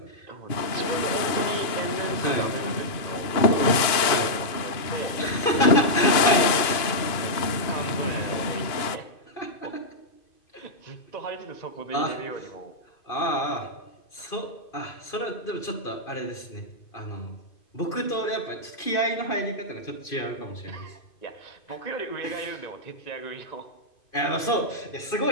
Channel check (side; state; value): right; late; 2.5 ms